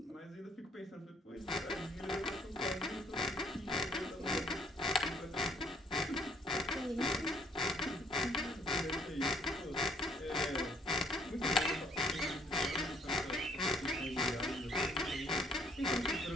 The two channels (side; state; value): both; normal; correlation 0.63